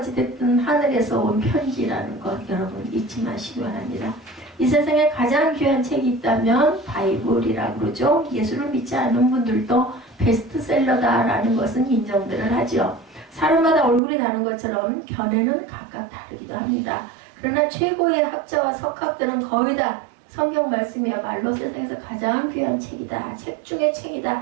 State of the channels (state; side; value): drops out; left; at 14.0 s